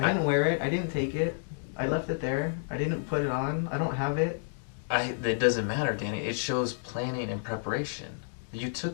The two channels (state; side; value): silent; right; digital silence